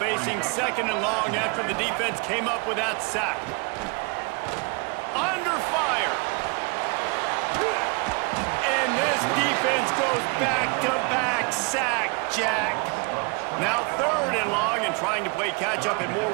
second and long after the defense came up with that sack. Under fire. And this defense goes back-to-back sack, Jack. Now third and long, and trying to play catch-up in more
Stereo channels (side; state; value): left; quieter; 31.8 dB